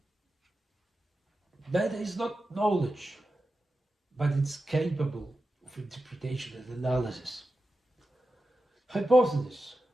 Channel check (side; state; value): both; normal; correlation 0.91